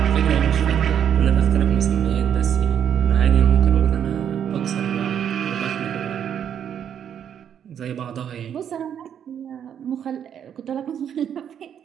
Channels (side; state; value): left; quieter; 8.9 dB